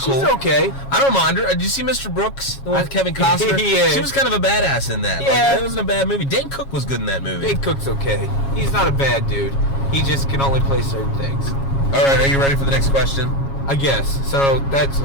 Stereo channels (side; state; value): right; late; 7.3 ms